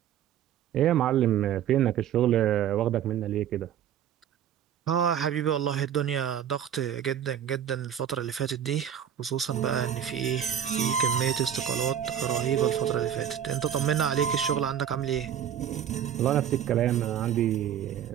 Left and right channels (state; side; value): quieter; left; 9.6 dB